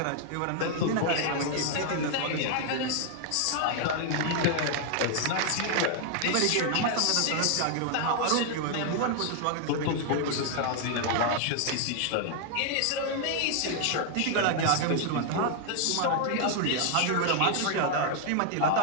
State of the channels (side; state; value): both; different; correlation 0.00